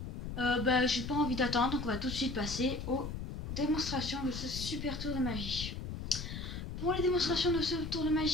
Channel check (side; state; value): left; noise; rumble, 6 dB below the sound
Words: J'ai pas envie d'attendre, donc on va tout de suite passer aux démonstrations de ce super tour de magie. Pour les démonstrations de ce tour de